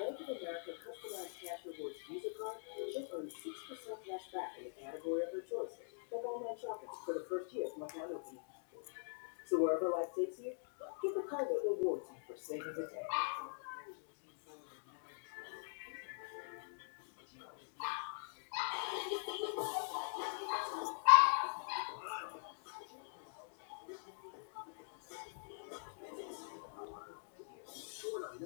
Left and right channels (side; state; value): right; silent; digital silence